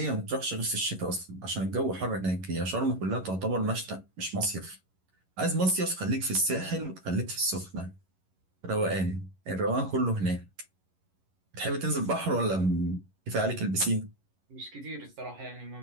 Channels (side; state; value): left; late; 11 ms